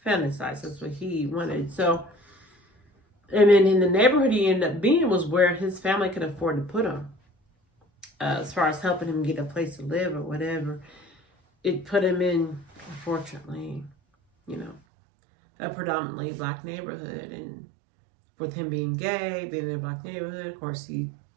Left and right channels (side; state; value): left; drops out; at 14.8 s